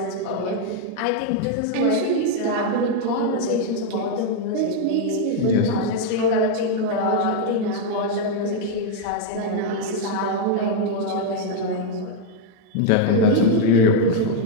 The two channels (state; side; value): different; both; correlation 0.00